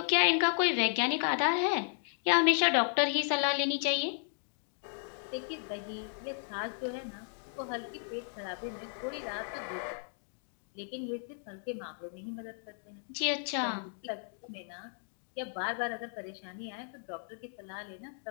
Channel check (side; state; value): right; silent; digital silence